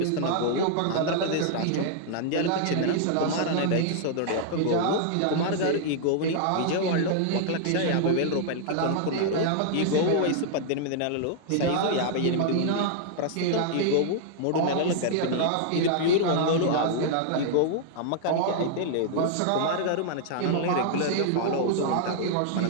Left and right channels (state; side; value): different; both; correlation -0.01